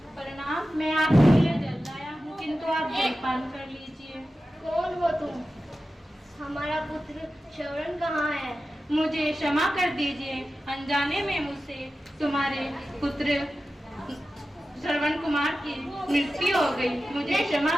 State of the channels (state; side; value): normal; both; correlation 0.94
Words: प्रणाम, मैं आपके लिए जल लाया हूँ, किंतु आप जलपान कर लीजिए। कौन हो तुम? हमारा पुत्र श्रवण कहाँ है? मुझे क्षमा कर दीजिए, अनजाने में मुझसे तुम्हारे पुत्र श्रवण कुमार की मृत्यु हो गई, मुझे क्षमा